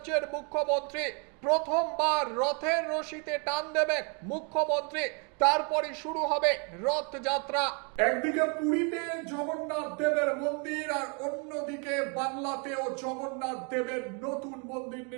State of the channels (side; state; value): left; quieter; 36.0 dB